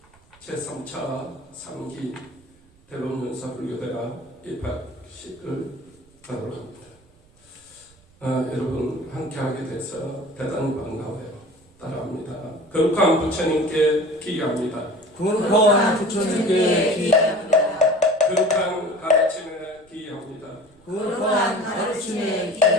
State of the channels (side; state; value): right; noise; rumble, 30 dB below the sound